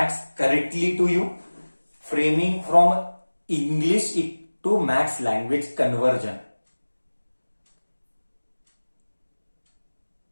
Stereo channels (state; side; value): inverted; both; correlation -1.00